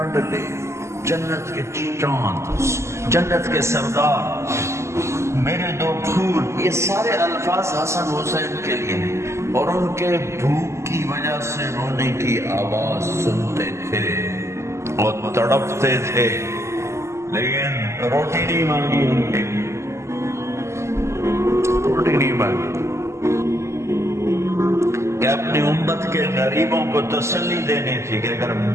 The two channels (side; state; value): left; late; 0.13 ms